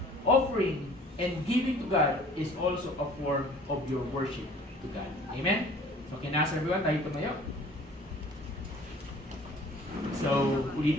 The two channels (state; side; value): normal; both; correlation 0.50